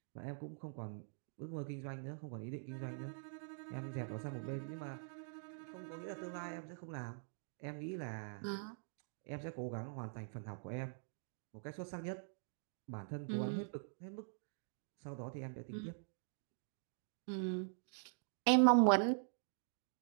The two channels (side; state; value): left; silent; digital silence